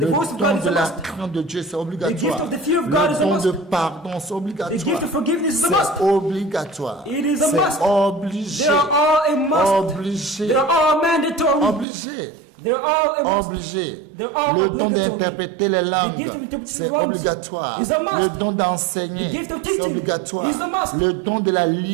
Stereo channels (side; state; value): left; drops out; at 11.9 s